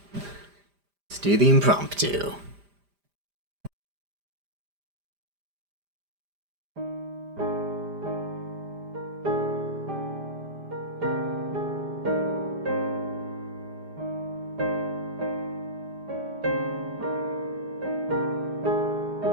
do the impromptu.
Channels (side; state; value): left; late; 5.0 ms